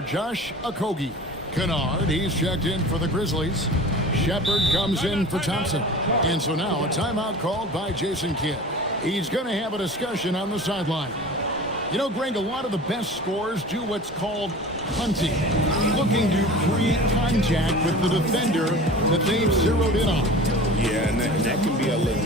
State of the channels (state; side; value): normal; both; correlation 0.38